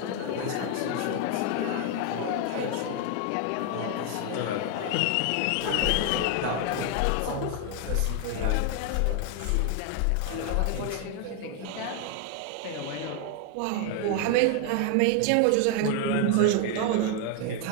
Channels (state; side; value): different; both; correlation 0.00